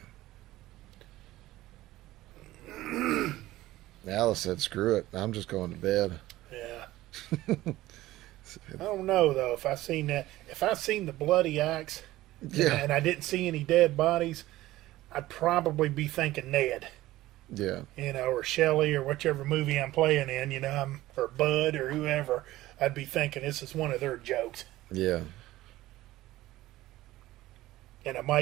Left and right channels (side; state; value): left; quieter; 16.6 dB